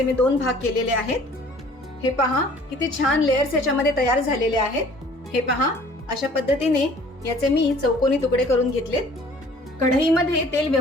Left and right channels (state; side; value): normal; both; correlation 0.52